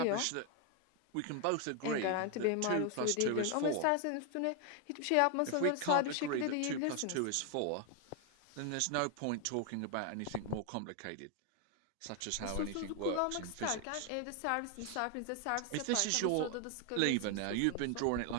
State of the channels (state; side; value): different; both; correlation 0.01